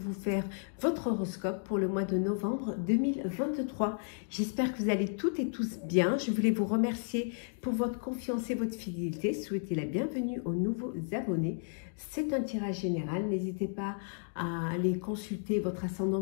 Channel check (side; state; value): right; silent; digital silence